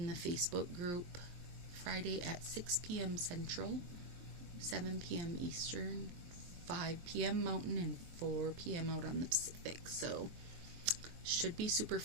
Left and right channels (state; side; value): late; left; 23 ms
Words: the Facebook group Friday at 6 p.m. Central, 7 p.m. Eastern, 5 p.m. Mountain, and 4 p.m. out on the Pacific. So should be super